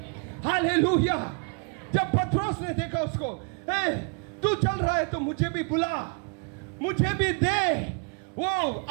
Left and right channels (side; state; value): left; quieter; 37.1 dB